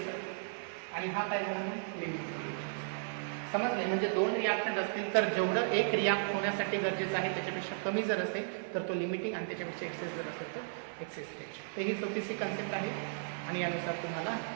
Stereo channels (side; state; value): left; silent; 54 dB below the other